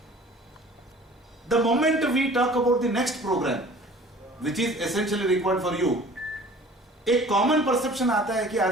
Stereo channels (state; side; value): normal; both; correlation 0.48